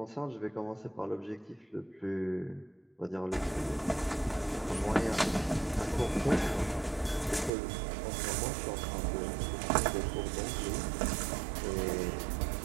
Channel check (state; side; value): drops out; left; at 7.5 s